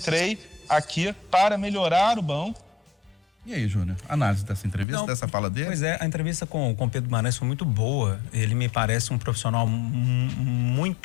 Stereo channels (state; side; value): drops out; right; at 4.9 s